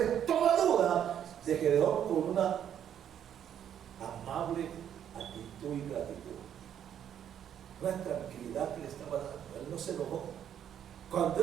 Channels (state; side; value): quieter; left; 9.6 dB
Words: toda duda de Gedeón con una amable actitud y gratitud. Una tranquilidad que le estaba dando. Él no se enojó.